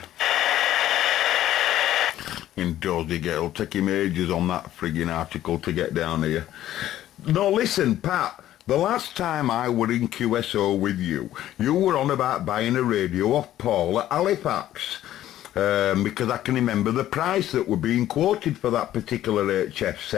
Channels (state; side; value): quieter; right; 13.0 dB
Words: In dozy get. It'll take him ages on that frigging article to get down here. No, listen, Pat. The last time I were in QSO with you, you were on about buying a radio off Paul at Halifax. Because I can remember the price that were being quoted for that particular HF